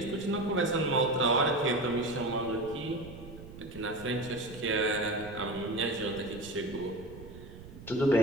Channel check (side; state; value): right; noise; rumble, 15 dB below the sound